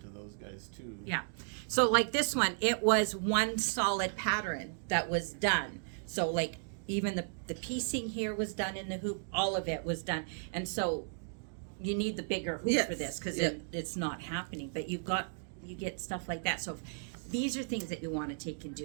those guys too. Yeah. So, like this one, it was one solid pattern that was done. So, like, even the piecing here was done in the hoop. All of it was done. And so you need the bigger hoop Yes. for this, because Yeah. it's not happening. But you get stuff like that. So these are things that you want to take and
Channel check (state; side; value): silent; left; digital silence